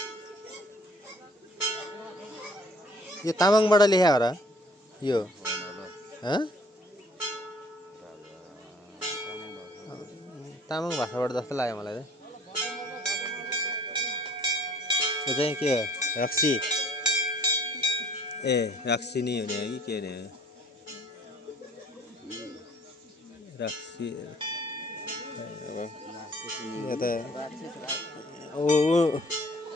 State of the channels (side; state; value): both; normal; correlation 0.56